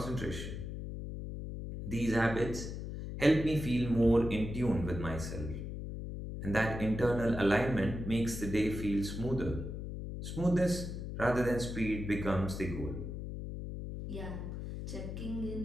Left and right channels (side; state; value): left; noise; hum, 6 dB below the sound